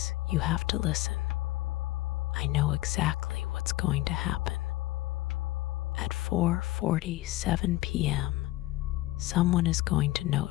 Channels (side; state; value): right; quieter; 17.4 dB